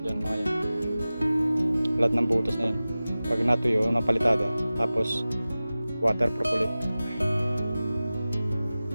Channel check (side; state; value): both; inverted; correlation -0.97